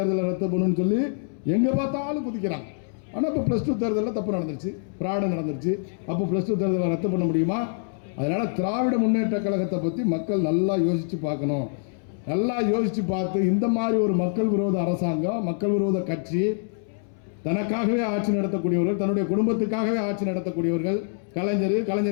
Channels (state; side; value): silent; right; 62 dB below the other